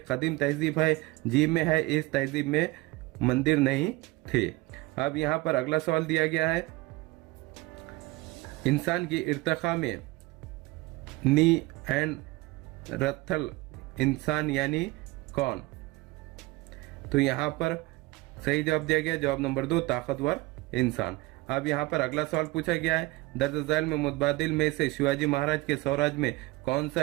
कदीम तहजीब है। जीम में है, इस तहजीब में मंदिर नहीं थे। अब यहाँ पर अगला सवाल दिया गया है इंसान की इर्तिका में नी एंड रथल इंसान यानी कौन। तो यहाँ पर सही जवाब दिया गया जवाब नंबर 2, ताकतवर इंसान। अब यहाँ पर अगला सवाल पूछा गया है दर्ज झैल में मुतबादिल में से शिवाजी महाराज के स्वराज में कौन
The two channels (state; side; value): quieter; left; 21.1 dB